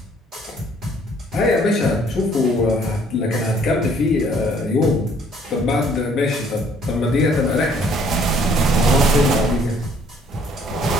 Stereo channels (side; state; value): both; normal; correlation 0.61